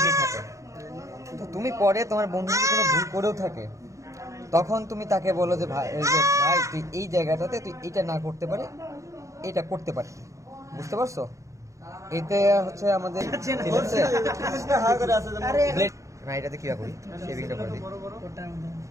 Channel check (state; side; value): late; left; 0.15 ms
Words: থাকে, তো তুমি পরে তোমার বন্ধু যদি কোনো ভুল করেও থাকে তখন তুমি তাকে বলো যে ভাই ভাই তুই এই জায়গাটাতে তুই এটা না করতে পারে এটা করতে পারবি, বুঝতে পারছো? এতে হচ্ছে আমাদের না, এটাতে কি করি শেভিংটা করে দিই।